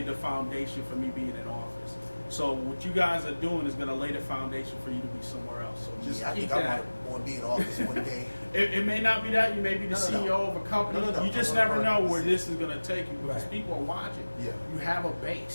the foundation for me being in office. So what you guys are doing is going to lay the foundation for you to be somewhere else. So just I keep think that. I want to be in office one day. It may not be that. You may be the CEO of a company. No. You just never know where this is going to take you, because people are watching. Yeah. You have a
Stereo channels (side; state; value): both; inverted; correlation -1.00